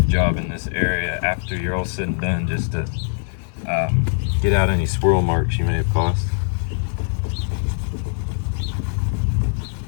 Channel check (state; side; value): silent; right; 57 dB below the other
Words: job in this area after you're all said and done, just to get out any swirl marks you may have caused.